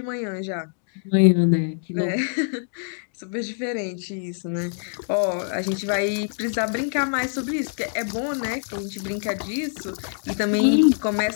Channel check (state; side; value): silent; right; digital silence